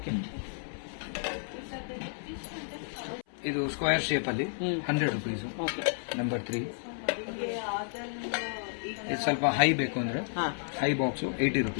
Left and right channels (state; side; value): silent; right; 57 dB below the other